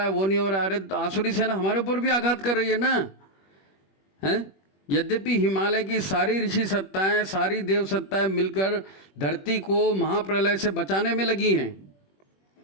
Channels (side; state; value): right; late; 21 ms